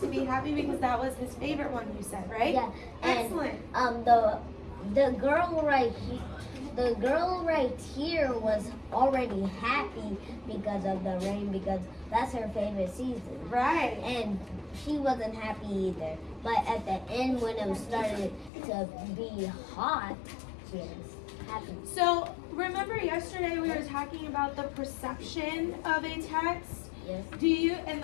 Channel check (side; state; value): right; drops out; at 18.5 s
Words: be happy because that was his favorite one, you said, right? Yeah. And Excellent. the girl right here was already happy because of the rain, because that's her favorite season. Right. And she wasn't happy either. But at the end, when it started to be hot, she was happy. So remember yesterday we were talking about the perception of a text? Yes. Do you, and